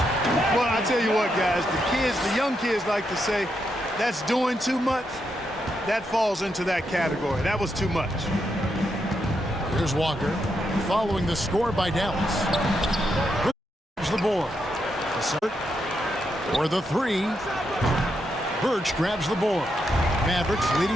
Well, I tell you what, guys, the young kids like to say, that's doing too much. That falls into that category. That was too much. Here's Walker following the score by Dallas. Here's the board. For the 3. Birch grabs the board. Mavericks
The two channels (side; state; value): both; normal; correlation 0.82